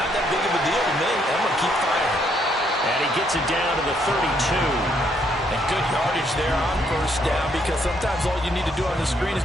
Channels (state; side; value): normal; both; correlation 0.71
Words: that big of a deal to me. I'm going to keep firing. And he gets it down to the 32. And good yardage there on 1st down, because sometimes all you need to do on the screen is